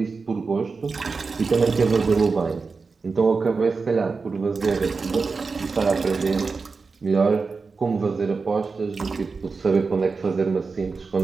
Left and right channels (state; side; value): quieter; left; 4.5 dB